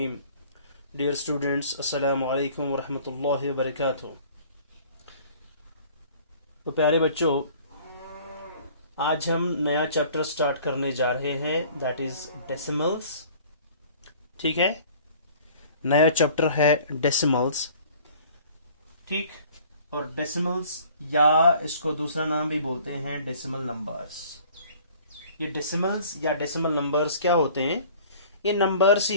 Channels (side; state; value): both; inverted; correlation -0.51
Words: Dear students, assalamu alaikum wa rahmatullahi wa barakatuh. तो प्यारे बच्चों, आज हम नया चैप्टर स्टार्ट करने जा रहे हैं, दैट इज डेसिमल्स. ठीक है, नया चैप्टर है डेसिमल्स. ठीक, और डेसिमल्स या इसको दूसरा नाम भी बोलते हैं डेसिमल नंबर्स. ये डेसिमल्स या डेसिमल नंबर्स क्या होते हैं? ये नंबर्स